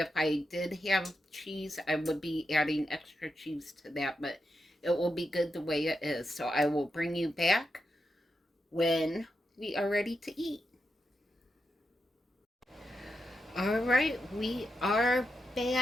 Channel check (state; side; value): normal; both; correlation 0.86